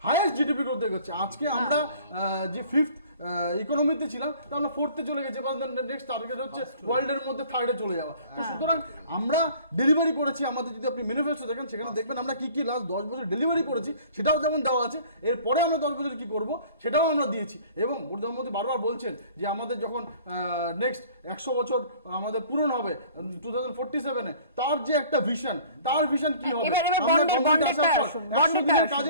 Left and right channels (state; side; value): inverted; both; correlation -0.49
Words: হাইয়েস্ট জিডিপি গ্রোথে এগোচ্ছে। আজকে আমরা যে 5th ইকোনমিতে ছিলাম, তা আমরা 4th চলে গেছে, নেক্সট টার্গেট হচ্ছে ওয়ার্ল্ডের মধ্যে 3rd চলে যাওয়া। তো সুতরাং আমরা ডেলিভারি করেছি, আমাদের যদি আপনি ম্যানিফেস্টো দেখেন, সেখানে দেখবেন আমরা কি লাস্ট 10 বছর ডেলিভারি করেছি, সেটাও যেমন দেওয়া আছে। এরপরে আমরা 10 বছর কি করব, সেটাও আমরা দিয়েছি। এবং প্রধানমন্ত্রী বারবার বলছেন যে আমাদের যখন নেক্সট 100 বছর আমাদের পূরণ হবে 2047-এ, তার যে একটা ভিশন, তার ভিশন কি হবে, কাজে